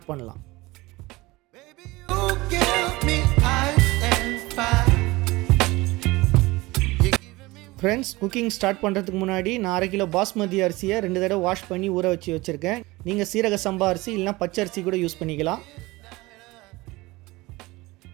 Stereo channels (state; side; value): quieter; left; 21.1 dB